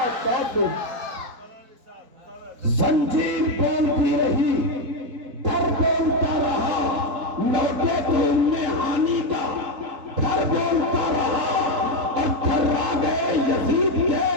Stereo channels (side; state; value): left; late; 3.8 ms